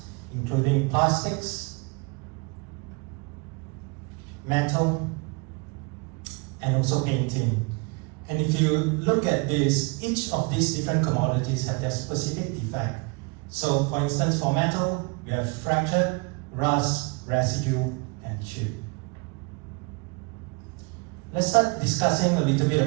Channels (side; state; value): left; quieter; 30.3 dB